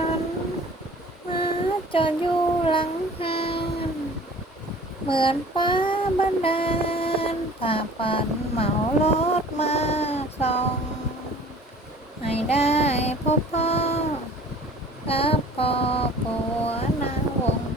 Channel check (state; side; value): normal; both; correlation 0.47